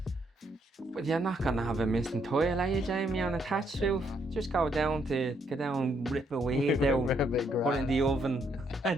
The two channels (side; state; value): both; normal; correlation 0.73